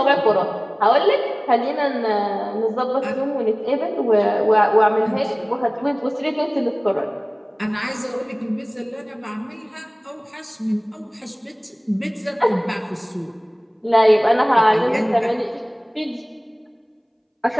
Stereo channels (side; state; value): both; identical; correlation 1.00